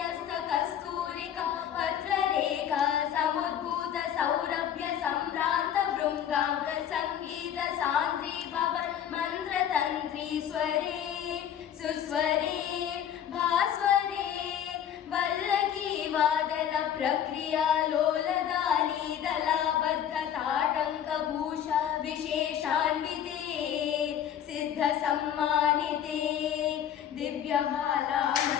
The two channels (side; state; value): right; quieter; 9.6 dB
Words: कस्तूरिका पत्ररेखा समुद्भूत सौरभ्य सम्भ्रान्त भृङ्गाङ्ग संगीत सान्द्री भव मन्त्रतन्त्री स्वरे सुस्वरे भास्वरे वल्लकी वादन प्रक्रिया लोलदानी दलाबद्ध ताटङ्कभूषा विशेषान्विते सिद्ध सम्मानिते